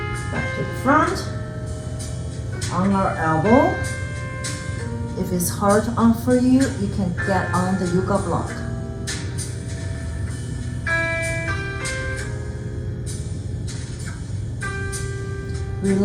Back to the front. On our elbow. If it's hard on for you, you can get on the yoga block.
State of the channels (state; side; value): identical; both; correlation 1.00